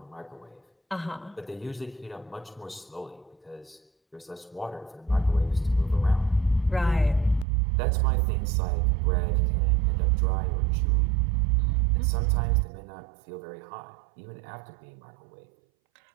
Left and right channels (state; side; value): drops out; left; at 7.5 s